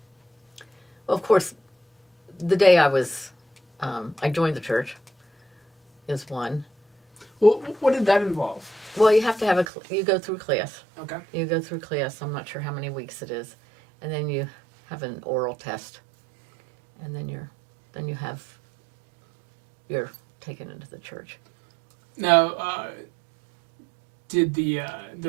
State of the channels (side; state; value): left; drops out; at 9.7 s